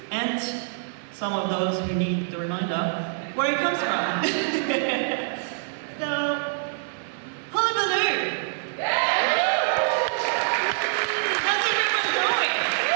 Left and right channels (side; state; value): left; silent; digital silence